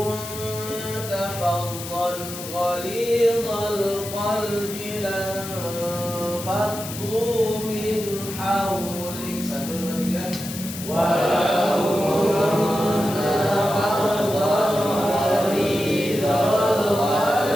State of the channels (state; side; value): noise; left; hiss, 10 dB below the sound